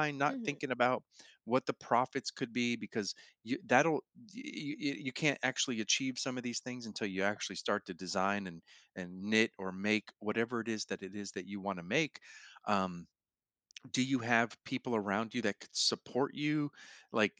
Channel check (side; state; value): both; identical; correlation 1.00